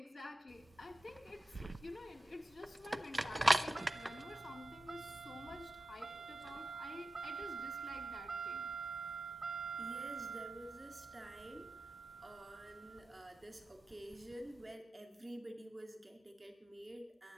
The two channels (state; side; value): normal; both; correlation 0.93